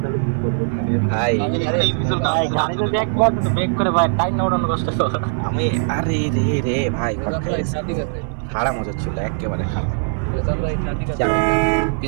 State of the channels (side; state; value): left; silent; 61 dB below the other